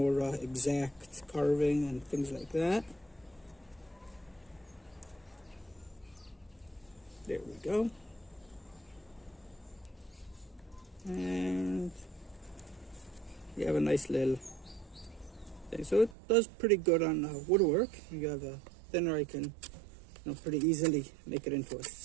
exact carving and things like that. There we go. And you have a nice little thing. So it does pretty good on woodwork. You have a thinner, I can pretty easily make it into a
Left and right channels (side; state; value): left; drops out; at 16.2 s